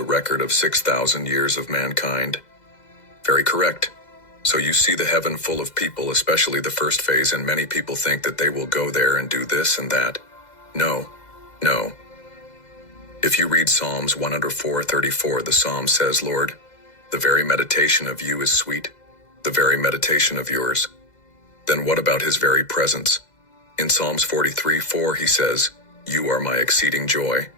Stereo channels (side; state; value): right; late; 2.0 ms